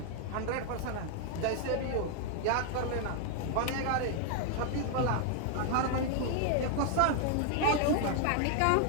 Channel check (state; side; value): different; both; correlation 0.00